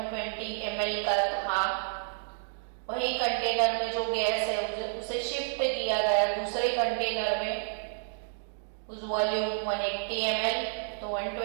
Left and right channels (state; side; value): silent; left; digital silence